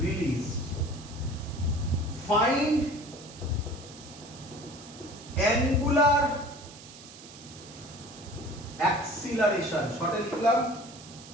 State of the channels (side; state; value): right; noise; hiss, 18 dB below the sound